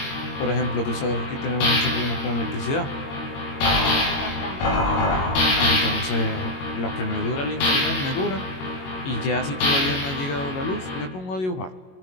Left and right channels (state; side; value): late; right; 22 ms